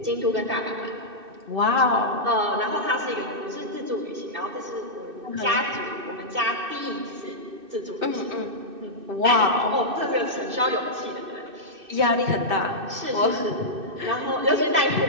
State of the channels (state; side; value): late; left; 2.6 ms